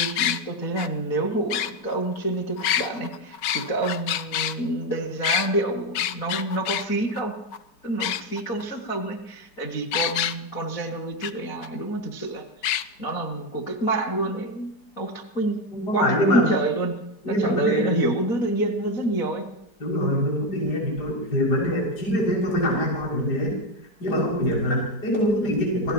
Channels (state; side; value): late; right; 5.2 ms